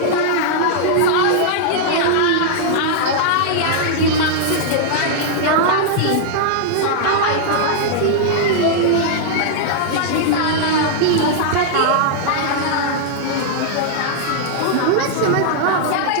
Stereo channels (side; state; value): both; different; correlation -0.01